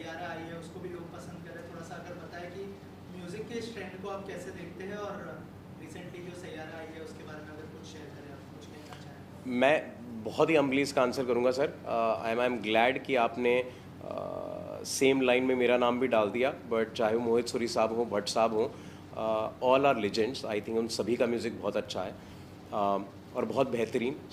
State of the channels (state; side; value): identical; both; correlation 1.00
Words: आई है उसको भी लोग पसंद कर रहे हैं। थोड़ा सा अगर बताएं कि म्यूज़िक के इस ट्रेंड को आप कैसे देखते हैं और रिसेंटली जो सैयारा आई है उसके बारे में अगर कुछ शेयर करें, आप कुछ कहना चाहें। मैं बहुत ही अम्बली इसका आंसर करूंगा सर। आई एम ग्लैड कि आपने सेम लाइन में मेरा नाम भी डाल दिया, बट चाहे वो मोहित सूरी साहब हो, भट्ट साहब हो, all are legends. I think उन सभी का म्यूज़िक बहुत अच्छा है और बहुत बेहतरीन।